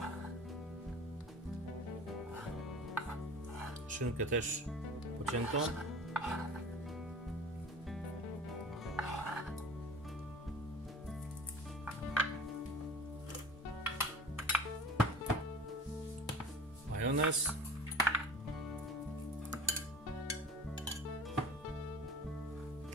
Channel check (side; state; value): both; normal; correlation 0.41